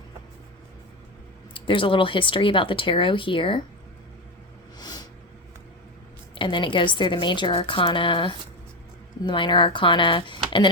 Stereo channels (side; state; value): both; normal; correlation 0.15